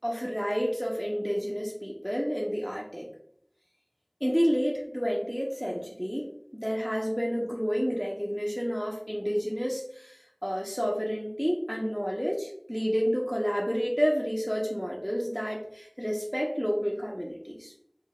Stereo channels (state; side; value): identical; both; correlation 1.00